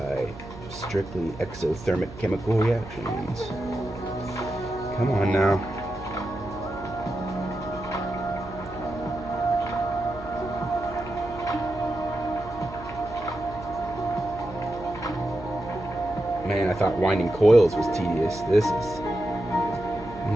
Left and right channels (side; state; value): right; noise; hum, 15 dB below the sound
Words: strictly exothermic chemical reactions. Come on now. Man, I thought winding coils was tedious. This is